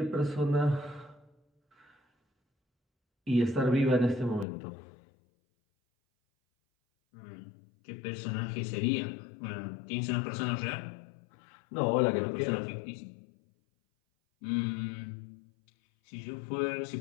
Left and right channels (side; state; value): right; drops out; at 4.5 s